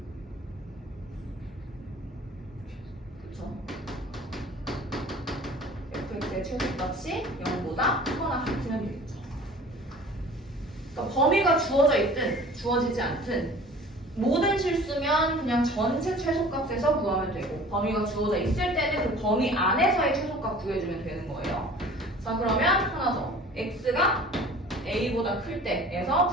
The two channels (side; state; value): both; normal; correlation 0.45